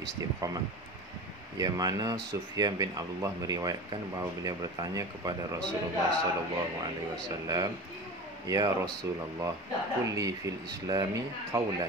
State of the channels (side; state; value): both; normal; correlation 0.32